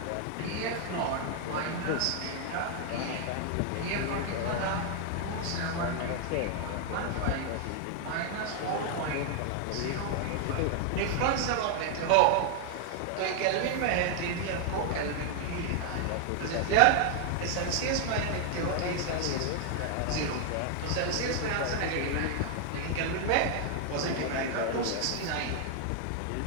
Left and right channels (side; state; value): both; different; correlation 0.00